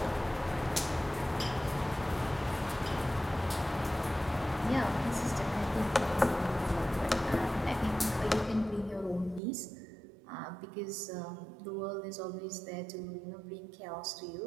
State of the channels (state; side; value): drops out; left; at 9.4 s